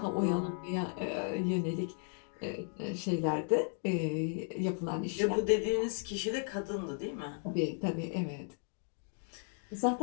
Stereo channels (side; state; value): right; silent; 54 dB below the other